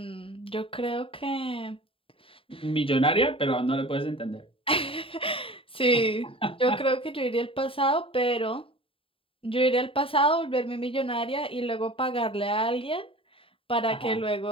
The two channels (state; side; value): late; right; 0.26 ms